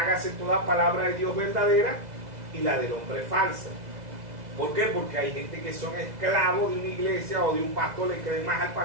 toda palabra de Dios verdadera y la del hombre falsa. ¿Por qué? Porque hay gente que son esclavos de una iglesia o de un pastor, le creen más al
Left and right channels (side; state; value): left; late; 2.0 ms